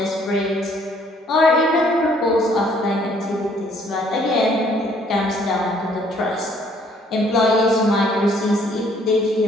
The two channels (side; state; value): both; normal; correlation 0.62